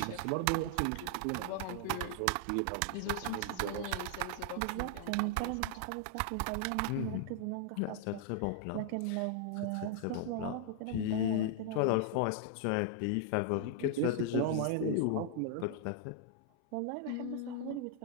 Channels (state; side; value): different; both; correlation 0.00